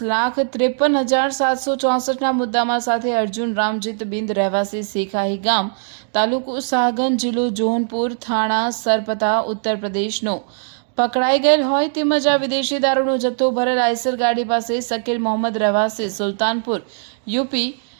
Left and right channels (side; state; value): left; silent; digital silence